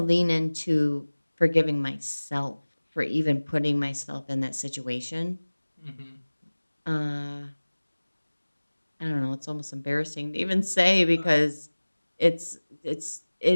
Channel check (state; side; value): inverted; both; correlation -1.00